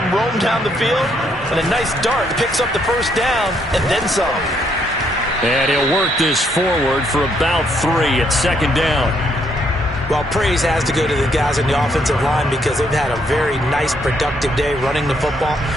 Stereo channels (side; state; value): both; normal; correlation 0.72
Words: him roam down the field, and a nice dart picks up the 1st down and then some. And he'll work this forward for about 3 at 2nd down. Well, praise has to go to the guys on the offensive line because they've had a very nice, productive day running the football.